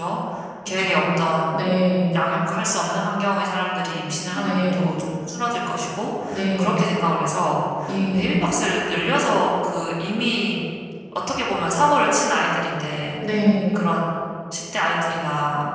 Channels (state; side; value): identical; both; correlation 1.00